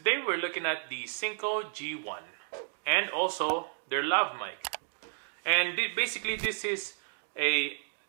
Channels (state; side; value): silent; left; digital silence